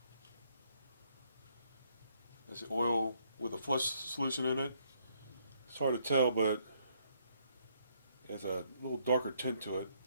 That's the oil with a flush solution in it. It's hard to tell, but it has a little darker tint to it.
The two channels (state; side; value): inverted; both; correlation -0.71